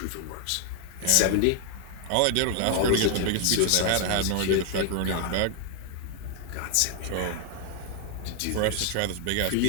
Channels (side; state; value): both; different; correlation 0.01